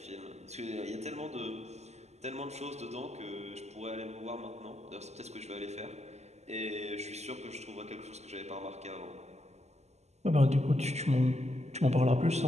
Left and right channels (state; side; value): late; left; 0.32 ms